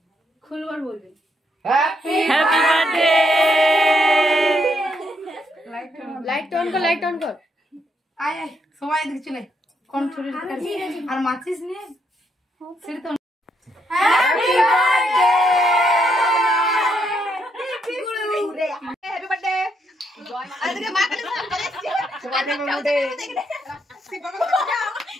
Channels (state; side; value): normal; both; correlation 0.76